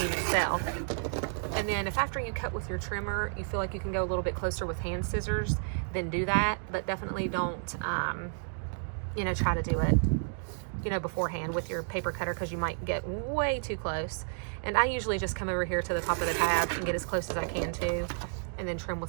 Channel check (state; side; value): silent; left; 57 dB below the other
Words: itself. And then if after you cut with your trimmer, you feel like you can go a little bit closer with hand scissors, then do that. But definitely don't, you know, try to do it, you know, beforehand with your paper cutter, because you might get way too close. And I usually just come over here to the top of the tab and get as close as I can to, and then trim